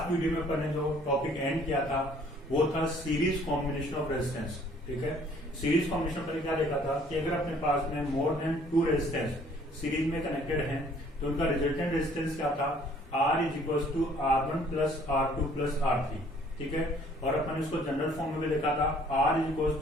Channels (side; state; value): both; normal; correlation 0.58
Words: वीडियो में अपन ने जो टॉपिक एंड किया था वो था सीरीज कॉम्बिनेशन ऑफ रेजिस्टेंस। ठीक है, सीरीज कॉम्बिनेशन पर क्या देखा था कि अगर अपने पास में मोर देन 2 रेजिस्टेंस सीरीज में कनेक्टेड हैं तो उनका रिजल्टेंट रेजिस्टेंस क्या था, R is equal to R1 plus R2 plus R3। ठीक है, और अपन इसको जनरल फॉर्म में भी लिखा था R is equal